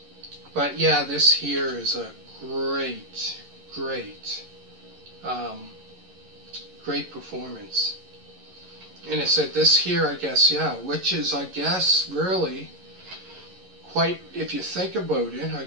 But yeah, this here is a great performance. And it said this here, I guess, yeah, which is, I guess, really quite, if you think about it, I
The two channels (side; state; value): left; late; 11 ms